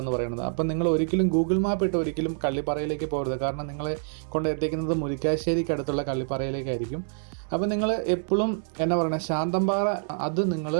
എന്ന് പറയുന്നത്. അപ്പം നിങ്ങൾ ഒരിക്കലും ഗൂഗിൾ മാപ്പ് ഇട്ട് ഒരിക്കലും കള്ളിപ്പാറയിലേക്ക് പോകരുത്. കാരണം നിങ്ങളെ കൊണ്ട് എത്തിക്കുന്നത് മുരിക്കാശ്ശേരിക്ക് അടുത്തുള്ള കള്ളിപ്പാറയിലേക്കായിരിക്കും. അപ്പോൾ നിങ്ങൾ എപ്പോഴും എന്നാ പറയുന്നത്, ശാന്തമ്പാറ അത് നിങ്ങൾ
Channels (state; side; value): silent; left; digital silence